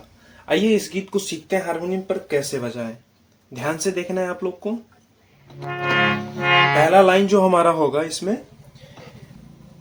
आइए इस गीत को सीखते हैं हारमोनियम पर कैसे बजाएं। ध्यान से देखना है आप लोग को। पहला लाइन जो हमारा होगा इसमें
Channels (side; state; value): both; identical; correlation 1.00